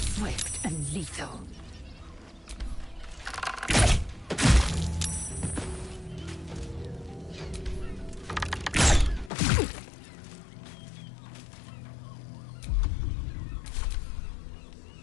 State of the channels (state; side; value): drops out; right; at 9.3 s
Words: Swift and lethal.